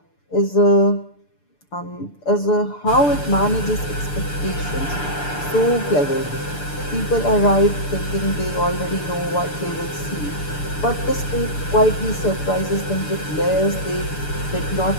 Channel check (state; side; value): late; right; 6.8 ms